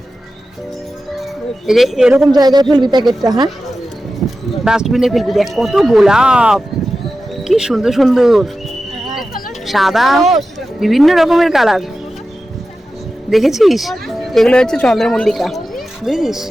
এই যে এরকম জায়গায় ফেলবি প্যাকেটটা, হ্যাঁ ডাস্টবিনে ফেলবি। দেখ কত গোলাপ, কি সুন্দর সুন্দর, সাদা, বিভিন্ন রকমের কালার। দেখেছিস এগুলো হচ্ছে চন্দ্রমল্লিকা, বুঝেছিস,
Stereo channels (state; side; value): normal; both; correlation 0.93